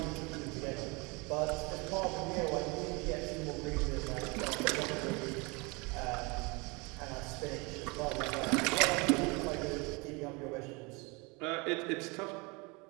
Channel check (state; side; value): quieter; left; 27.8 dB